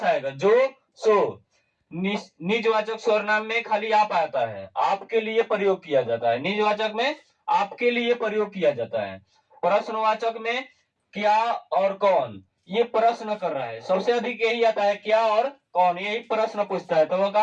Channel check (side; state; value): both; identical; correlation 1.00